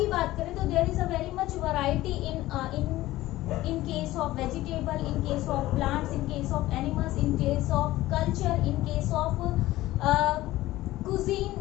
बात करें तो there is a very much variety in case of vegetable, in case of plants, in case of animals, in case of culture, in case of cuisine.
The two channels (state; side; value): quieter; right; 16.5 dB